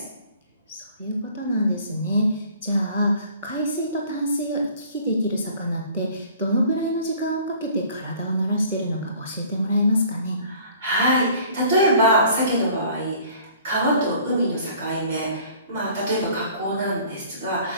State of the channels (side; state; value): both; inverted; correlation -0.52